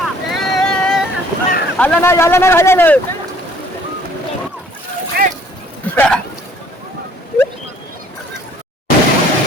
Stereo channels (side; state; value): both; normal; correlation 0.58